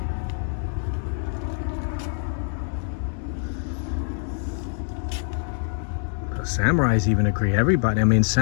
Samurais even agree. Everybody, I mean,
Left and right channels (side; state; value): right; silent; digital silence